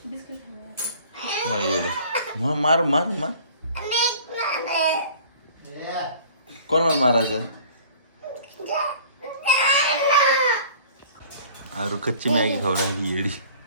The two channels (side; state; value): both; inverted; correlation -0.49